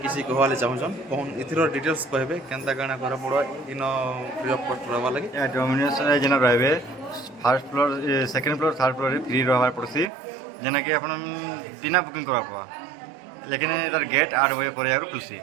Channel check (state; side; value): drops out; left; at 10.1 s